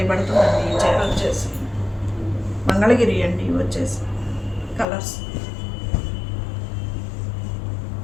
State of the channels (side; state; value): right; drops out; at 4.9 s